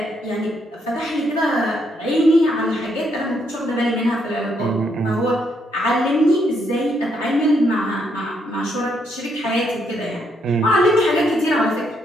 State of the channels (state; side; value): normal; both; correlation 0.75